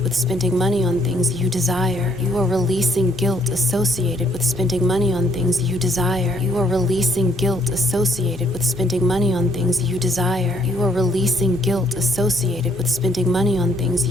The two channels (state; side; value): normal; both; correlation 0.67